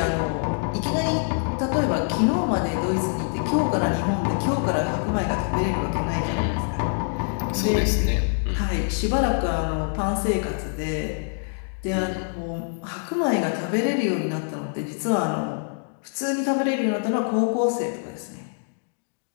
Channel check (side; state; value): right; silent; 58 dB below the other